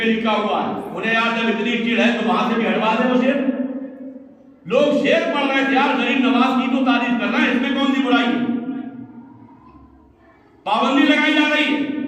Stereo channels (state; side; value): identical; both; correlation 1.00